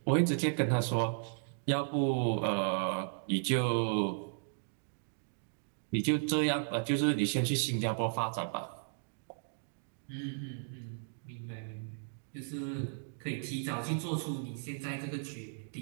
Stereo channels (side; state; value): left; silent; digital silence